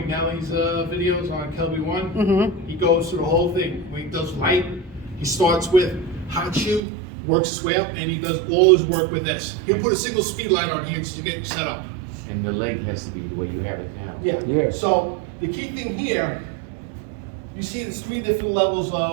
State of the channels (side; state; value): left; drops out; at 6.8 s